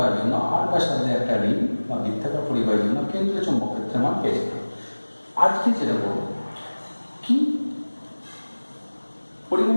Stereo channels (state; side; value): inverted; both; correlation -1.00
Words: জন্য আর ব্যাসার্ধের একটা রিং বা বৃত্তাকার পরিবাহীর জন্য কেন্দ্রের চৌম্বক ক্ষেত্রের মান পেয়েছিলাম। আজকে যেটা বলবো কি,